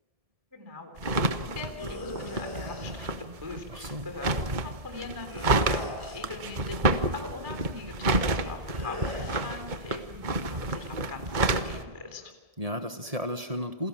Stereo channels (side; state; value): left; late; 1.7 ms